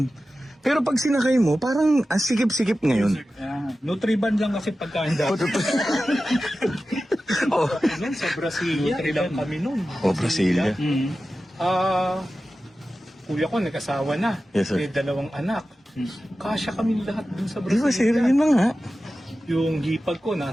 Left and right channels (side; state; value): both; normal; correlation 0.94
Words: Pero pag sinakay mo, parang ang sikip-sikip ngayon. Nutriban lang kasi pagkain dati. Oh, Yan, sa Brasilia. Ilang kami nun. oh, Brasilia. Kuya ko nag-asawa na. Yes, sir. May 2 anak. Kasya kami lahat dun sa Di ba sir, Brasilia. yun na nga. Yung hipag ko